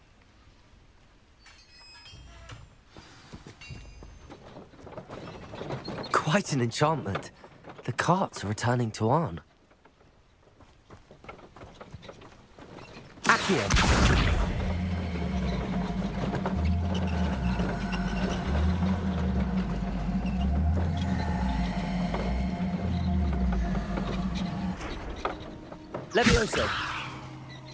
Quite an enchantment. The carts are returning to Arn. Accio. Levioso.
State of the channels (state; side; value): identical; both; correlation 1.00